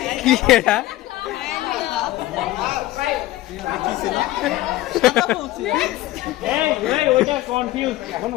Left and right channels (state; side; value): quieter; right; 16.7 dB